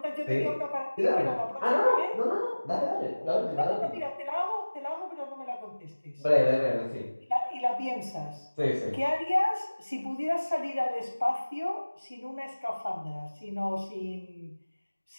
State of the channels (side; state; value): both; inverted; correlation -1.00